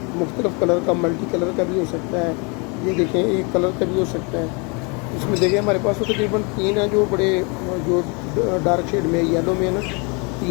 मुख्तलिफ़ कलर का, मल्टी कलर का भी हो सकता है। ये देखें एक कलर का भी हो सकता है। इसमें देखें हमारे पास तो तकरीबन 3 है जो बड़े जो डार्क शेड में येलो में है ना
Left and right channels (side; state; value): right; quieter; 31.8 dB